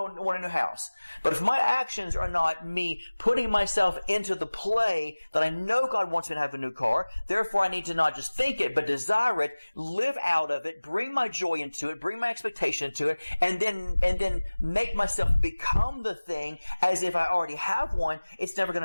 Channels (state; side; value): inverted; both; correlation -1.00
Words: want a new house. But if my actions are not me putting myself into the play that I know God wants me to have a new car, therefore I need to not just think it, but desire it, live out of it, bring my joy into it, bring my expectation into it, and then make myself become the thing as if I already have one, it's never going